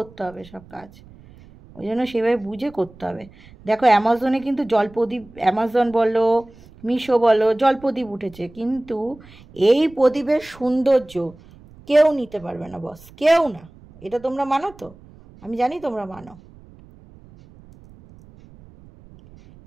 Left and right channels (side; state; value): right; noise; rumble, 23 dB below the sound